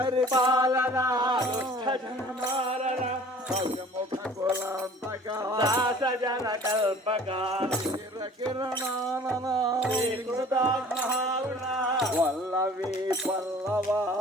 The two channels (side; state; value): both; normal; correlation 0.48